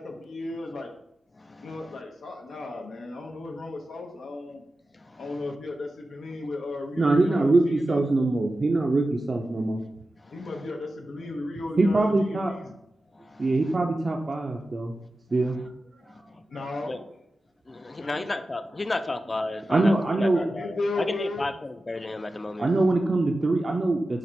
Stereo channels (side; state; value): both; normal; correlation 0.93